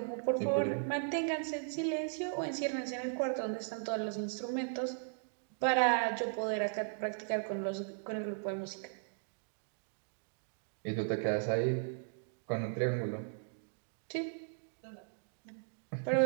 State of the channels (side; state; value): left; silent; digital silence